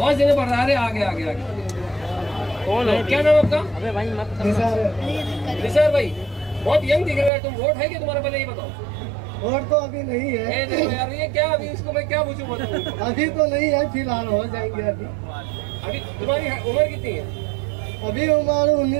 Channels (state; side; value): drops out; left; at 7.3 s